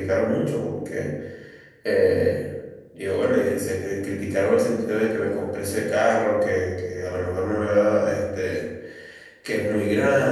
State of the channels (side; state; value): both; identical; correlation 1.00